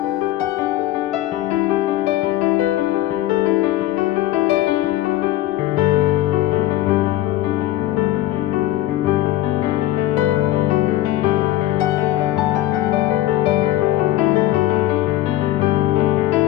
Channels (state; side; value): quieter; right; 15.0 dB